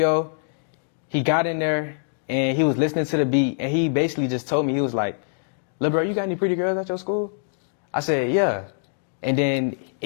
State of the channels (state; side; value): silent; right; digital silence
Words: He got in there and he was listening to the beat, and he basically just told me, he was like, "Lil' bro, you got any pretty girls at your school?" I said, "Yeah." And then